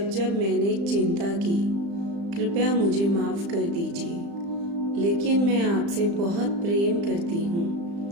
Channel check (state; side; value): late; left; 35 ms